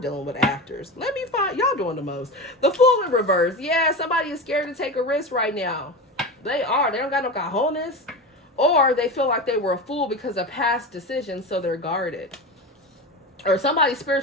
with actors. Let me find, y'all doing the most. The Fool in reverse. Yeah, somebody is scared to take a risk right now. They are. They don't got no cojones. Or they feel like they were a fool because of past decisions, so they're guarded. Or somebody's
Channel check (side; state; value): both; normal; correlation 0.24